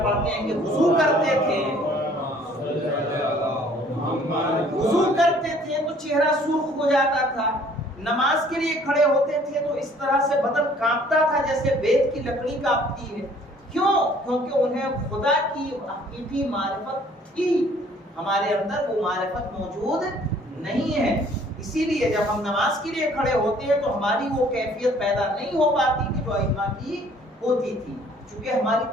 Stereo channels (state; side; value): normal; both; correlation 0.57